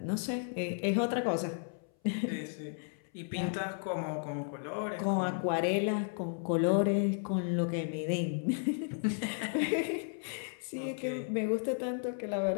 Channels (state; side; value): silent; right; 55 dB below the other